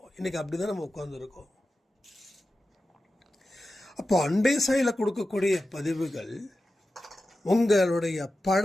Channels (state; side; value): normal; both; correlation 0.93